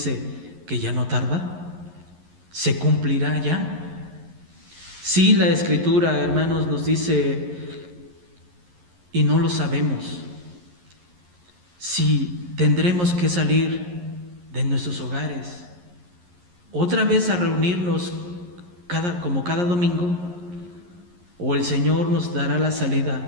que ya no tarda? ¿Se cumplirá ya? Sí, la Escritura, hermanos, nos dice, y no lo sabemos, si tendremos que salir de nuestros hogares otra vez a reunirnos como cada domingo, o el Señor nos dará la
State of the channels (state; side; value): late; left; 11 ms